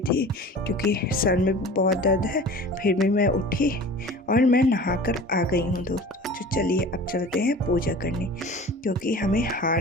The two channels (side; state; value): both; normal; correlation 0.40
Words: थी क्योंकि सर में बहुत दर्द है। फिर भी मैं उठी और मैं नहाकर आ गई हूँ दोस्तों। तो चलिए अब चलते हैं पूजा करने, क्योंकि हमें हार